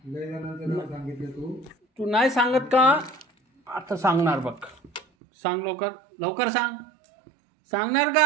लय जणांचं नाव सांगितलं तू नाही सांगत का? आता सांगणार बघ. सांग लवकर सांग. सांगणार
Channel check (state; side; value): drops out; left; at 5.1 s